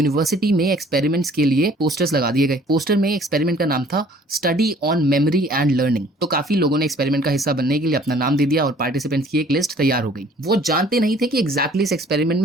में एक्सपेरिमेंट्स के लिए पोस्टर्स लगा दिए गए। पोस्टर में एक्सपेरिमेंट का नाम था study on memory and learning. तो काफी लोगों ने एक्सपेरिमेंट का हिस्सा बनने के लिए अपना नाम दे दिया और पार्टिसिपेंट्स की एक लिस्ट तैयार हो गई। वो जानते नहीं थे कि एग्जैक्टली इस एक्सपेरिमेंट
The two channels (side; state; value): both; normal; correlation 0.55